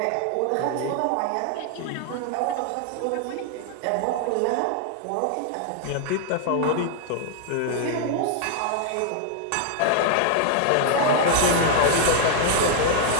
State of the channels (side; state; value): both; different; correlation 0.00